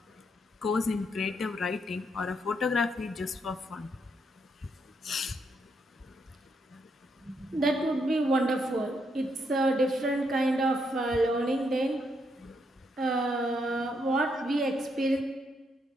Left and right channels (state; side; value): normal; both; correlation 0.77